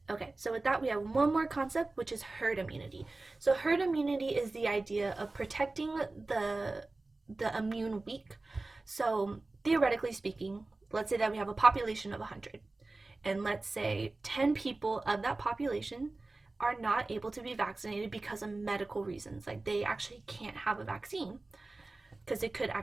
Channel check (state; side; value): quieter; left; 3.2 dB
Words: Okay, so with that, we have one more concept, which is herd immunity. So herd immunity is the idea of protecting the immune weak. So theoretically speaking, let's say that we have a population of 100. And let's say 10 people of that population are not able to be vaccinated because of medical reasons. Like they actually can't have a vaccine because it could